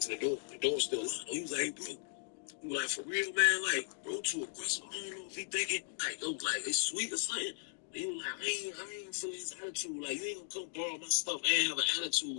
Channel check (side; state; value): right; silent; digital silence